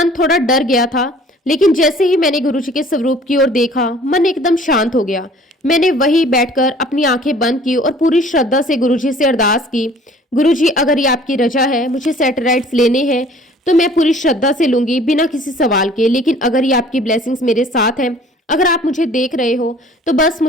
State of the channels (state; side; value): normal; both; correlation 0.52